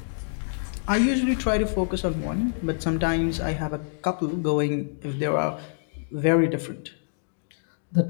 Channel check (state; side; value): silent; right; digital silence